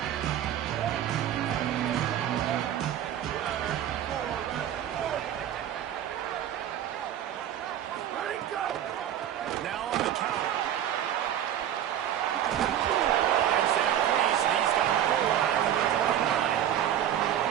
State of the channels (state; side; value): quieter; left; 10.7 dB